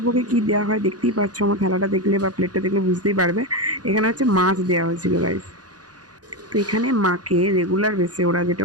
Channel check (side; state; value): left; late; 0.68 ms